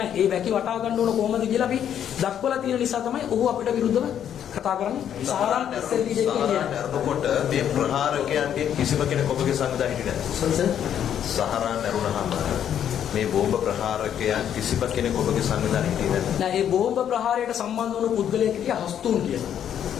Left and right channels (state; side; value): quieter; right; 9.5 dB